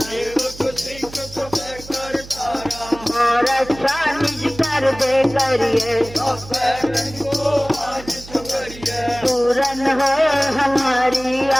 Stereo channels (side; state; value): right; noise; hum, 16 dB below the sound